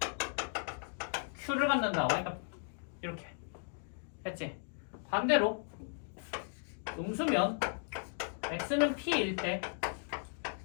q를 갖는다. y값 이렇게 했지. 반대로 음수면 x는 p일 때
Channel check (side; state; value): right; silent; 54 dB below the other